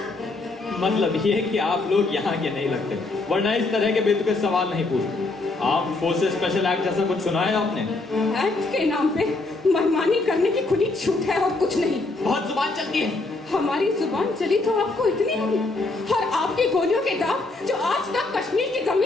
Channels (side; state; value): right; quieter; 3.3 dB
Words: मतलब ये कि आप लोग यहाँ के नहीं लगते, वरना इस तरह के बेतुके सवाल नहीं पूछते। आप फोर्सेस स्पेशल एक्ट जैसा कुछ सुना है आपने? एक्ट के नाम पे मनमानी करने की खुली छूट है और कुछ नहीं। बहुत जुबान चलती है। हमारी जुबान चली तो आपको इतनी होगी, और आपकी गोलियों के दाग जो आज तक कश्मीर की